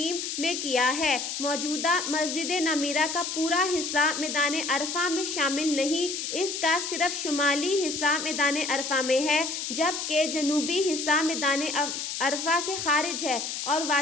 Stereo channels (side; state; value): left; noise; hiss, 4 dB below the sound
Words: میں کیا ہے۔ موجودہ مسجد نمیرہ کا پورا حصہ میدان عرفہ میں شامل نہیں، اس کا صرف شمالی حصہ میدان عرفہ میں ہے جبکہ جنوبی حصہ میدان عرفہ سے خارج ہے اور